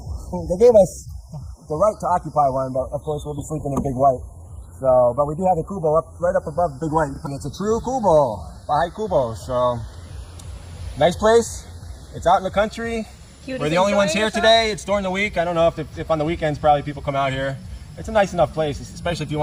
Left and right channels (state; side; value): identical; both; correlation 1.00